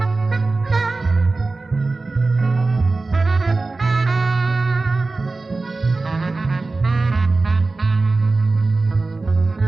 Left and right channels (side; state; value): left; quieter; 3.5 dB